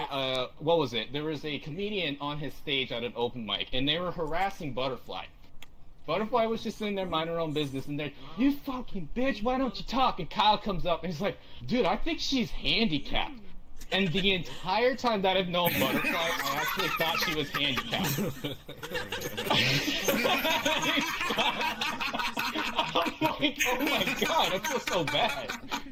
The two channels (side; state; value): both; identical; correlation 1.00